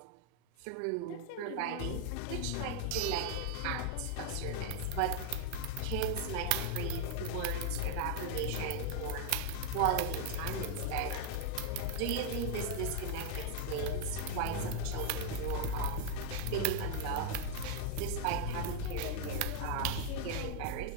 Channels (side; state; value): both; different; correlation 0.00